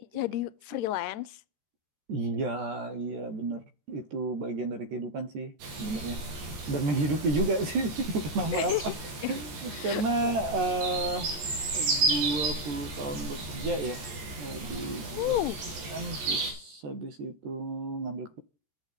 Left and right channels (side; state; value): left; late; 14 ms